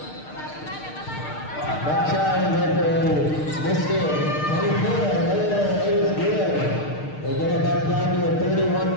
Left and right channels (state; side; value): late; right; 6.6 ms